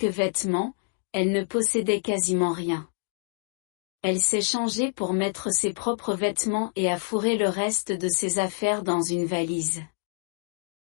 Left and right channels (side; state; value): right; silent; digital silence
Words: vêtements, elle ne possédait quasiment rien. Elle s'est changée pour mettre ses propres vêtements et a fourré le reste de ses affaires dans une valise.